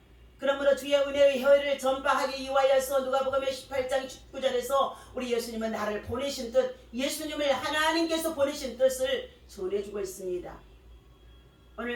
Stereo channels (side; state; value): both; identical; correlation 1.00